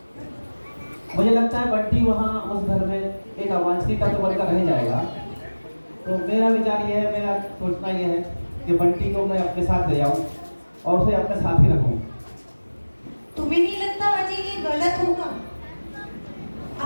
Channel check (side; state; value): both; inverted; correlation -1.00